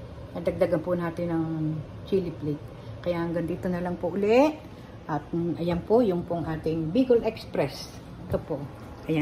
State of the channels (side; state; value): both; identical; correlation 1.00